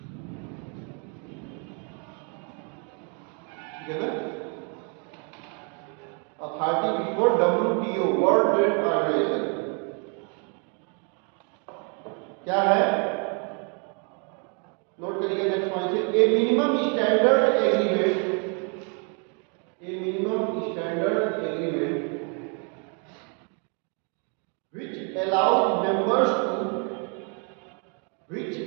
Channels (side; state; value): left; quieter; 37.6 dB